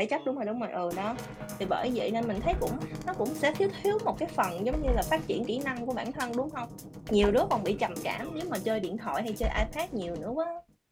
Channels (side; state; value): both; identical; correlation 1.00